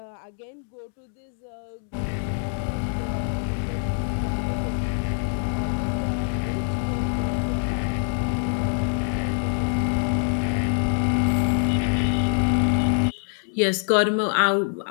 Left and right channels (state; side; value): silent; right; 59 dB below the other